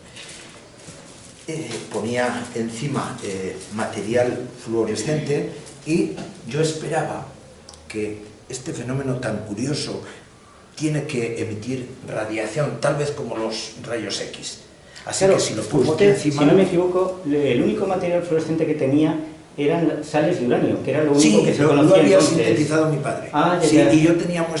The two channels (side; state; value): both; identical; correlation 1.00